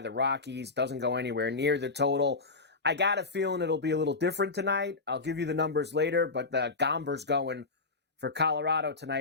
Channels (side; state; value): right; quieter; 3.9 dB